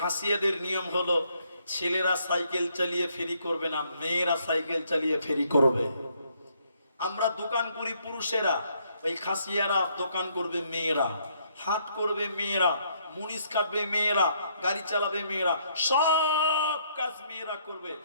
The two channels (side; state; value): both; inverted; correlation -0.70